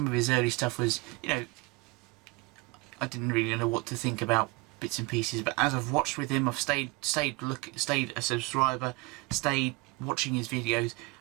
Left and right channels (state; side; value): quieter; left; 25.1 dB